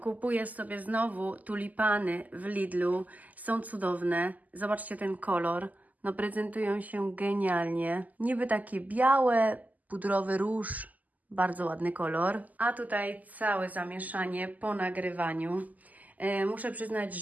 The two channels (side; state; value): left; late; 0.079 ms